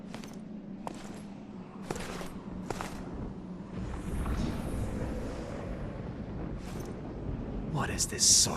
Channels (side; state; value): both; identical; correlation 1.00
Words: What is this